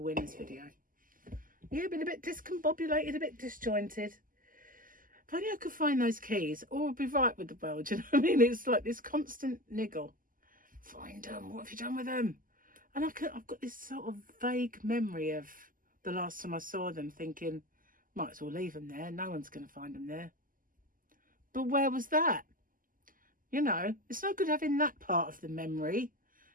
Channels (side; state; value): left; late; 0.41 ms